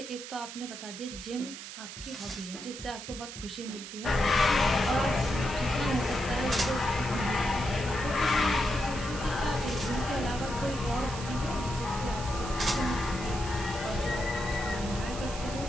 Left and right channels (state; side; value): noise; right; hiss, 10 dB below the sound